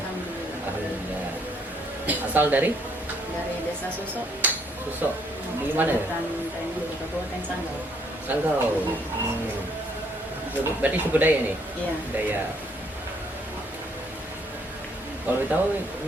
Alhamdulillah. Asal dari Desa Susok. Susok. Di mana ya? Kabupaten Sanggau. Sanggau. Berarti suku Dayak nih? Iya. Dayak. Kalau tahu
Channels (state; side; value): normal; both; correlation 0.67